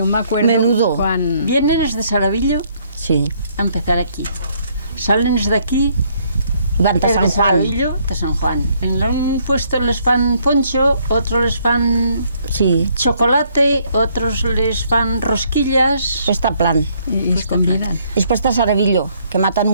me acuerdo Menudo. cuando... Vienen desde Saravillo Sí. a empezar aquí. Salen desde aquí, Van a desde San Juan. Saravillo, de San Juan. En un puesto les fan poncho, otros les fan Sí. chocolate, otros les fan rosquillas. Pues está plan. Y es combinan. Después está Saravillo, que matan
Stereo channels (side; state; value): both; inverted; correlation -0.68